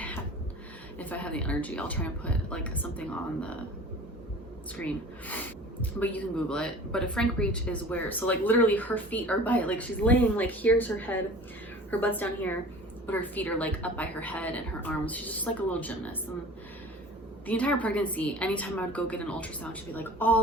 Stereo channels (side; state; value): both; normal; correlation 0.42